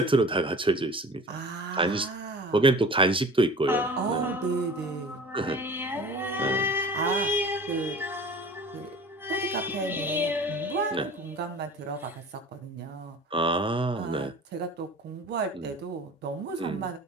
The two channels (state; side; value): normal; both; correlation 0.40